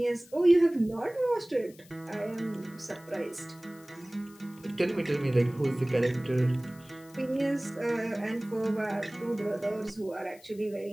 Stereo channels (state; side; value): noise; left; hiss, 25 dB below the sound